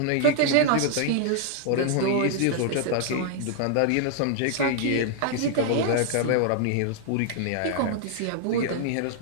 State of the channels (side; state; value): both; different; correlation 0.00